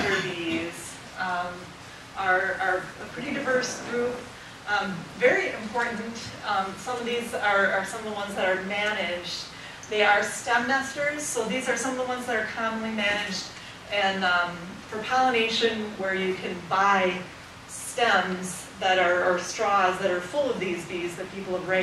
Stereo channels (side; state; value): both; identical; correlation 1.00